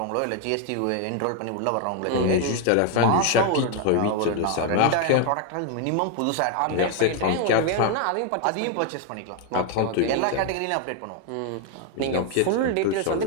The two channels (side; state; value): both; different; correlation 0.01